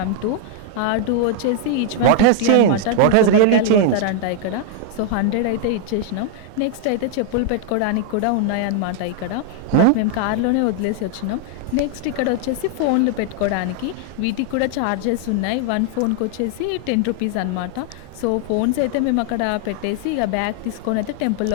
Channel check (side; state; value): both; different; correlation 0.00